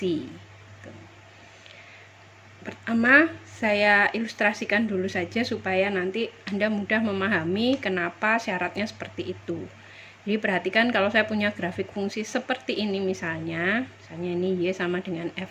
Pertama, saya ilustrasikan dulu saja supaya nanti Anda mudah memahami kenapa syaratnya seperti itu. Jadi perhatikan kalau saya punya grafik fungsi seperti ini misalnya ini Y sama dengan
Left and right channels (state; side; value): identical; both; correlation 1.00